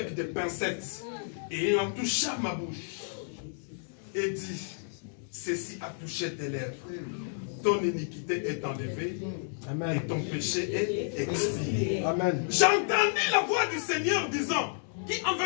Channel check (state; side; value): silent; right; digital silence